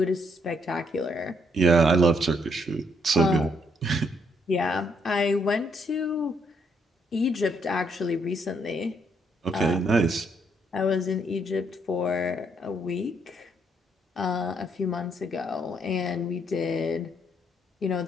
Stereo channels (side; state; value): both; normal; correlation 0.72